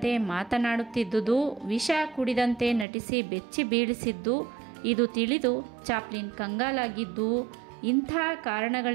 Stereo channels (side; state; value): left; drops out; at 2.9 s